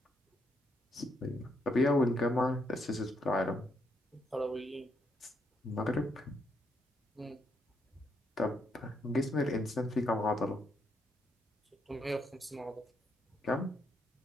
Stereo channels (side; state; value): both; normal; correlation 0.76